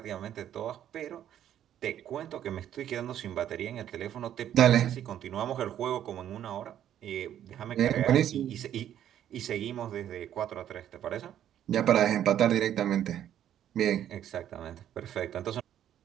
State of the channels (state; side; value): quieter; left; 10.7 dB